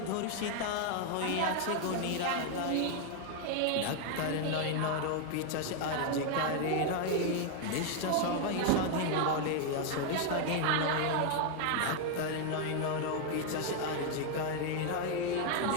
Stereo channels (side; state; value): both; different; correlation 0.00